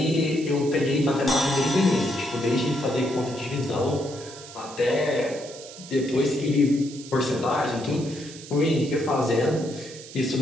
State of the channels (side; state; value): right; noise; hiss, 16 dB below the sound